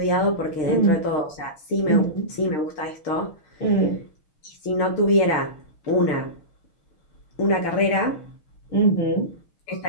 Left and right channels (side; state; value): right; late; 6.6 ms